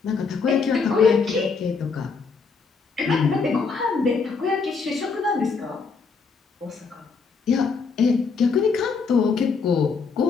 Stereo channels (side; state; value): right; quieter; 5.0 dB